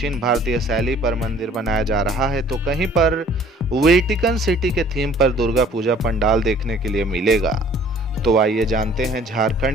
भारतीय शैली पर मंदिर बनाया जा रहा है तो कहीं पर वेटिकन सिटी के थीम पर दुर्गा पूजा पंडाल देखने के लिए मिलेगा। तो आइए जानते हैं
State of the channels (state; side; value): normal; both; correlation 0.54